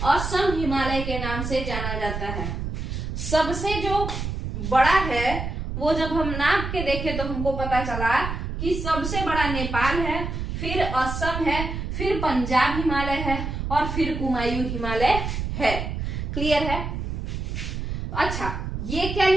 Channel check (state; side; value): noise; right; rumble, 4 dB below the sound